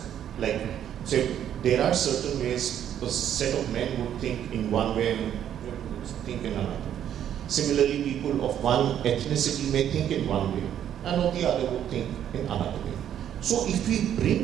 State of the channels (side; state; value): left; quieter; 10.1 dB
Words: like, say, there are certain ways a set of men would think in one way and would think in another. Similarly, people of one ethnicity may think in one way and of the other would think in another way. So if we